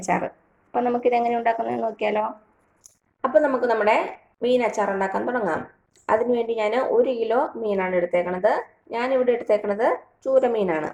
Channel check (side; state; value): both; identical; correlation 1.00